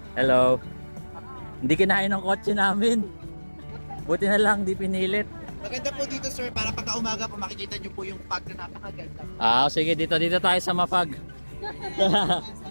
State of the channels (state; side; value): inverted; both; correlation -1.00